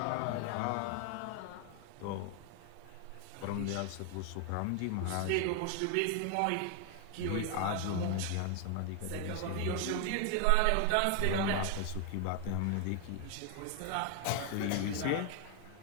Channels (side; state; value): both; different; correlation 0.01